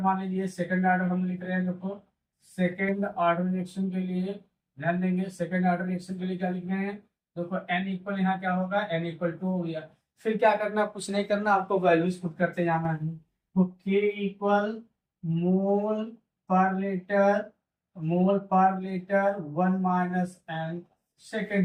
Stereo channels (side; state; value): both; identical; correlation 1.00